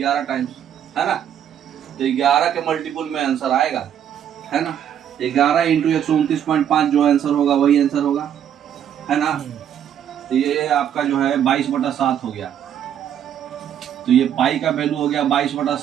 टाइम्स है ना। तो 11 के मल्टीपल में आंसर आएगा है ना। 11 इंटू 129.5 जो आंसर होगा वही आंसर होगा है ना। तो ये आपका जो है 22/7 हो गया। तो ये पाई का वैल्यू हो गया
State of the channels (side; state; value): left; quieter; 9.6 dB